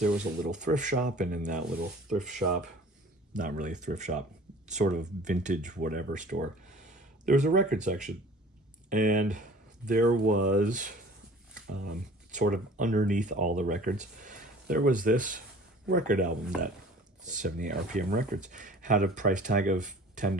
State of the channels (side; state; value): both; normal; correlation 0.47